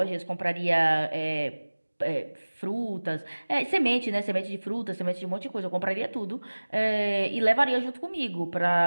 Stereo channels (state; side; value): inverted; both; correlation -1.00